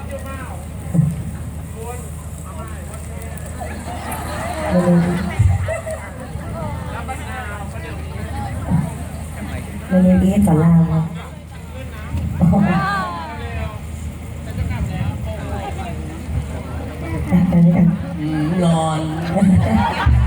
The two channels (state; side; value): identical; both; correlation 1.00